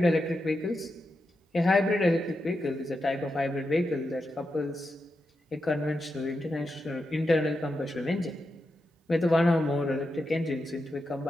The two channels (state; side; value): normal; both; correlation 0.88